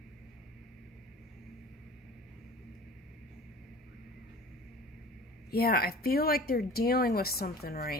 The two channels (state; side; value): normal; both; correlation 0.41